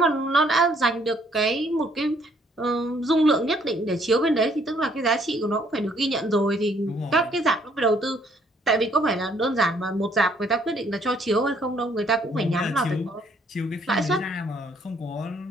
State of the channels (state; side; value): normal; both; correlation 0.65